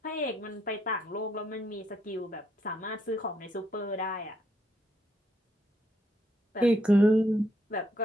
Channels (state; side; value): normal; both; correlation 0.74